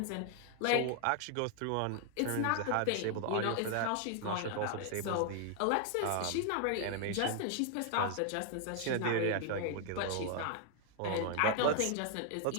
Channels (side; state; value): both; different; correlation 0.00